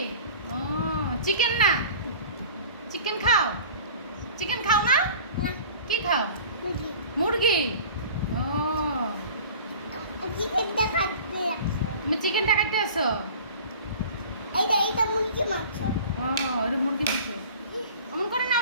ও চিকেন না চিকেন খাও না না, কি খাও মুরগি। মুরগি ও চিকেন দেখাতে লাগছে। তুমি চিকেনটা কাটতে আসো এইটা মুরগি মাংস। ও এটা মুরগি মাংস অমন করে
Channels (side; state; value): both; inverted; correlation -0.42